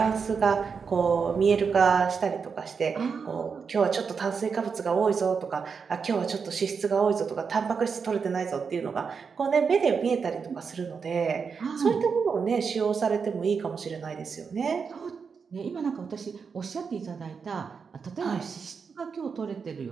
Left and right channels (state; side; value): quieter; left; 5.7 dB